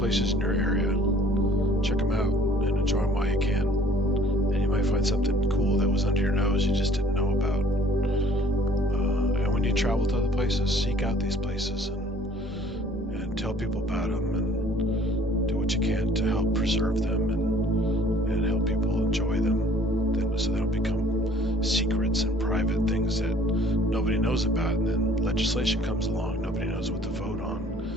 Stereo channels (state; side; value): normal; both; correlation 0.55